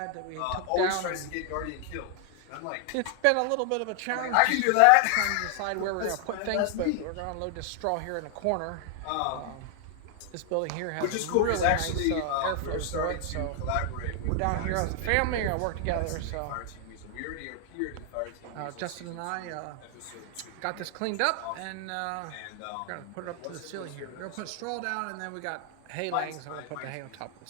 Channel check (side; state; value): both; different; correlation 0.00